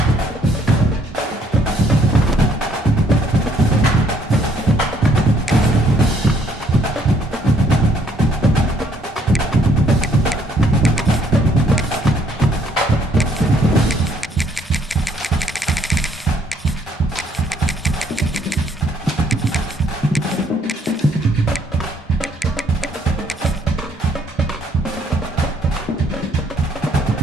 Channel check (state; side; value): normal; both; correlation 0.66